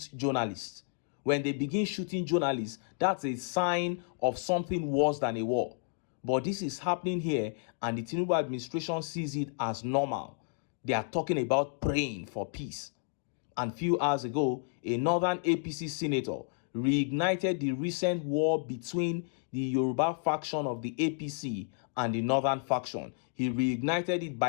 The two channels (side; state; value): right; silent; 57 dB below the other